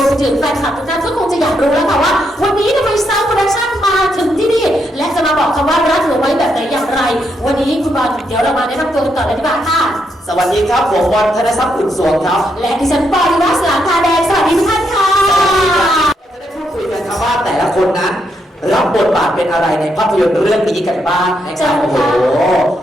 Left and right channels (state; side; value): normal; both; correlation 0.79